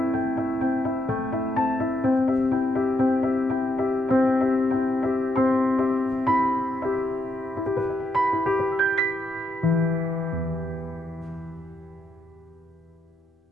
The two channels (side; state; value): both; normal; correlation 0.78